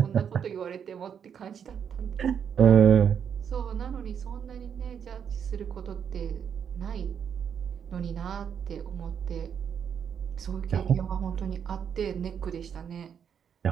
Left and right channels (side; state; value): left; quieter; 7.8 dB